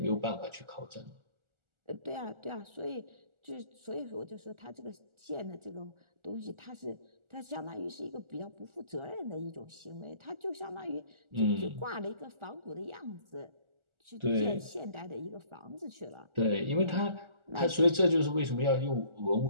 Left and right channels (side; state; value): left; late; 1.4 ms